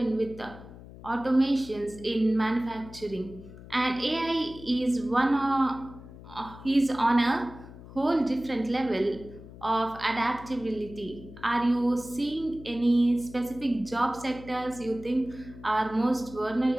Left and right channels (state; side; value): noise; left; hum, 17 dB below the sound